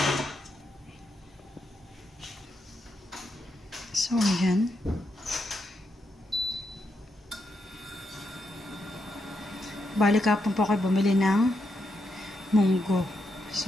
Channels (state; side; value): normal; both; correlation 0.82